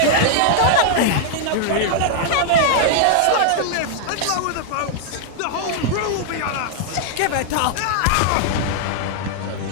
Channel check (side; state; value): both; different; correlation -0.01